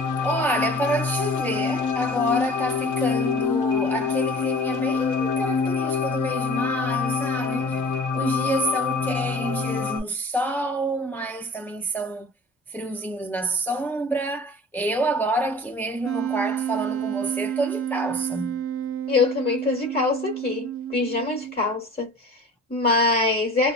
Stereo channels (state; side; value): normal; both; correlation 0.44